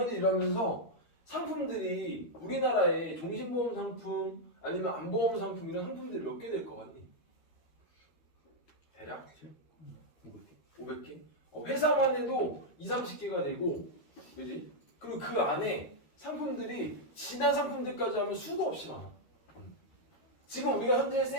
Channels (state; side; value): late; right; 13 ms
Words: 일하면서 상품들이 우리나라에 종신보험 상품 아니면 안보험 상품 이런 상품들이 몇 개 될 것 같니? 대략 500개? 회사만 해도 20-30개가 되고 그지? 그리고 그 안에 상품들이 지난 상품들까지 하면 수도 없이 많아. 지금 우리가 현재